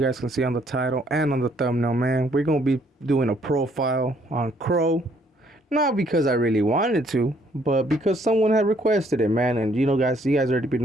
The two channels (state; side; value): normal; both; correlation 0.66